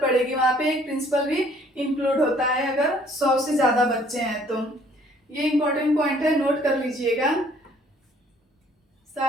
पड़ेगी, वहां पे एक प्रिंसिपल भी इंक्लूड होता है अगर 100 से ज्यादा बच्चे हैं तो। ये इंपॉर्टेंट पॉइंट है, नोट कर लीजिएगा।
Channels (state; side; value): normal; both; correlation 0.60